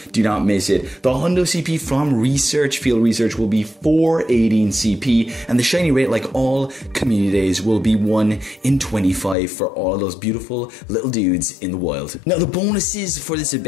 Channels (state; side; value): drops out; right; at 9.3 s